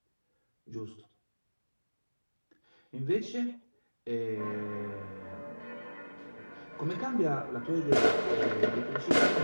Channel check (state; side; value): inverted; both; correlation -1.00